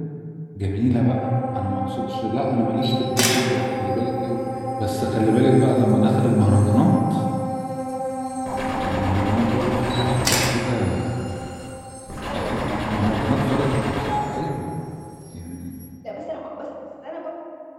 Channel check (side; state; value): both; identical; correlation 1.00